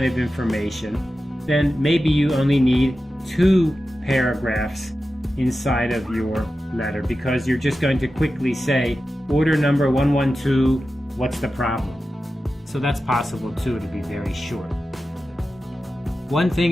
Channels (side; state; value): both; normal; correlation 0.93